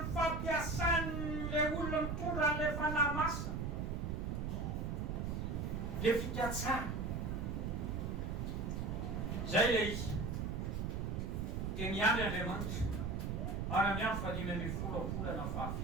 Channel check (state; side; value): noise; right; rumble, 1 dB below the sound